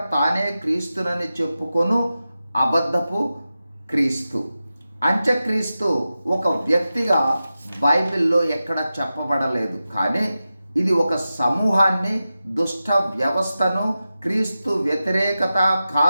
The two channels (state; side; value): inverted; both; correlation -0.93